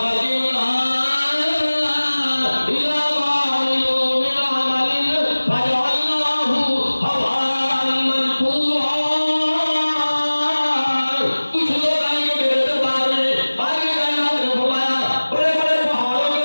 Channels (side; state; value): both; inverted; correlation -1.00